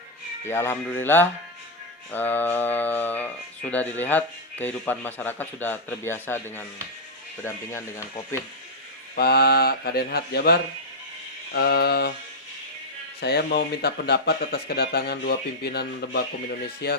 Ya alhamdulillah sudah dilihat kehidupan masyarakat sudah terbiasa dengan berdampingan dengan COVID. Pak Kadenhat Jabar, saya mau minta pendapat atas kedatangan dua pimpinan Lembakum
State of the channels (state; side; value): normal; both; correlation -0.06